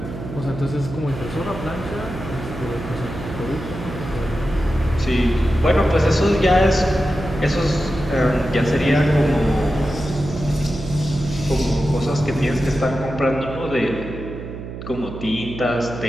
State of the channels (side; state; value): right; noise; hum, 10 dB below the sound